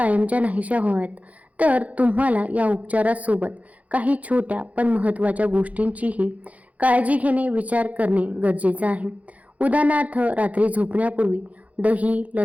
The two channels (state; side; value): late; left; 0.069 ms